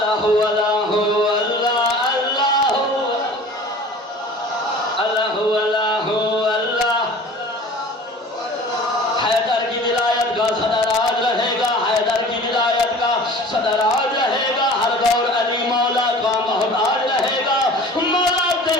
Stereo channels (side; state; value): both; normal; correlation 0.43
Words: सदराज रहेगा, हर दौर अली मौला का मोहताज रहेगा। मौला